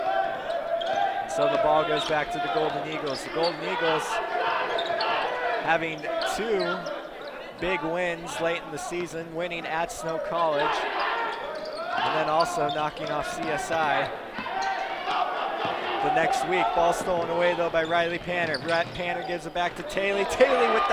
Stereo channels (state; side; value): identical; both; correlation 1.00